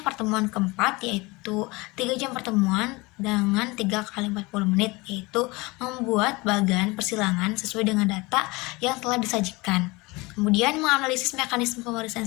pertemuan keempat yaitu 3 jam pertemuan dengan 3 kali 40 menit, yaitu membuat bagan persilangan sesuai dengan data yang telah disajikan. Kemudian menganalisis mekanisme pewarisan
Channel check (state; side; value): quieter; right; 23.9 dB